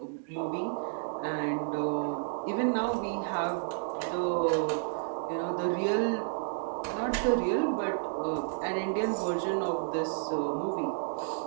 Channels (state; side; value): silent; left; digital silence